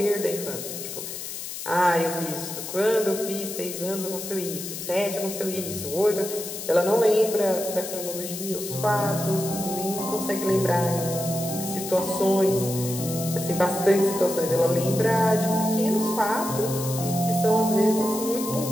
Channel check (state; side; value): noise; left; hiss, 8 dB below the sound